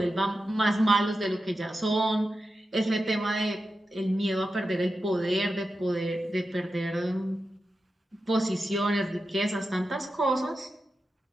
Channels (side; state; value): both; normal; correlation 0.90